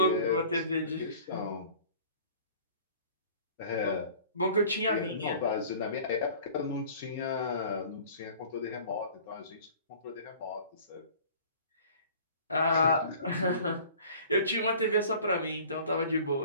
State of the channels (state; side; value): inverted; both; correlation -0.47